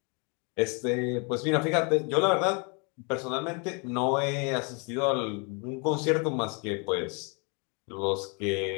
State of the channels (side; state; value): right; quieter; 33.8 dB